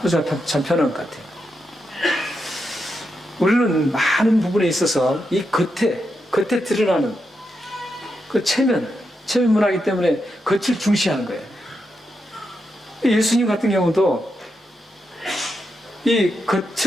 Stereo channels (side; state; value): both; normal; correlation 0.85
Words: 호주가 참 편한 것 같아요. 우리는 많은 부분에 있어서 이 겉에 드러나는 그 체면 문화이기 때문에 겉을 중시하는 거예요. 예수님 같은 경우도 이